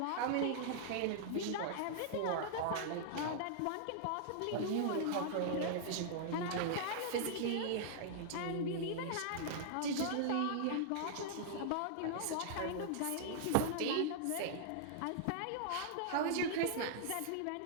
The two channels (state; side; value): different; both; correlation -0.01